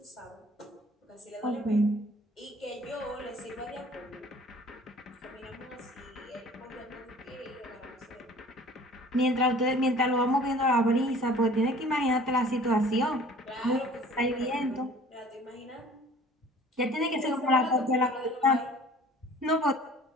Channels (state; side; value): normal; both; correlation 0.49